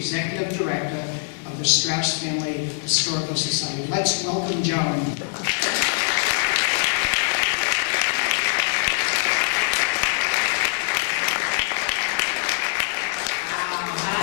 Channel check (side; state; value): right; silent; 63 dB below the other